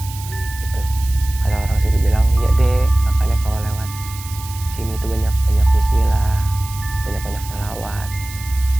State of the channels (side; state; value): right; noise; hiss, 14 dB below the sound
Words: gitu. Kata orang situ bilang, ya deh, makanya kalau lewat sini tuh banyak bismillah, banyak salawat,